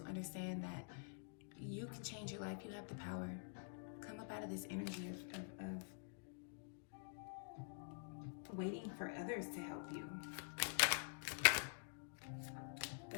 understand that you can change your life. You have the power. Come up out of this energy of waiting for others to help you.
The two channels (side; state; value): right; silent; digital silence